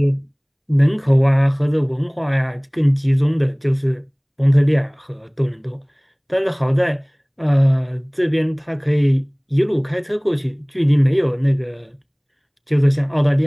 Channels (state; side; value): identical; both; correlation 1.00